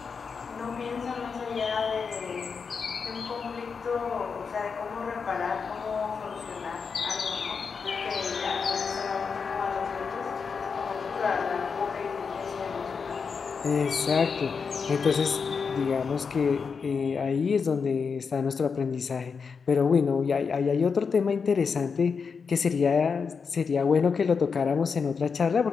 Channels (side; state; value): right; quieter; 5.6 dB